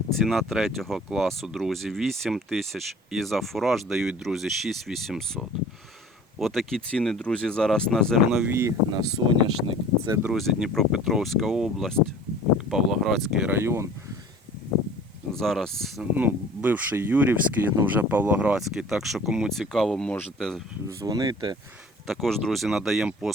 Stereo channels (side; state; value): both; normal; correlation 0.46